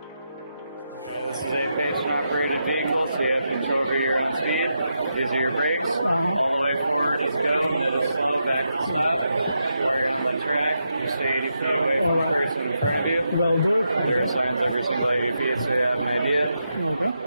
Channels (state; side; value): inverted; both; correlation -0.84